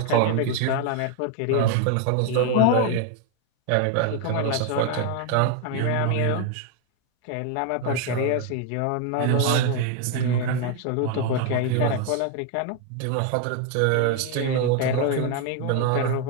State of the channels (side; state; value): both; different; correlation 0.01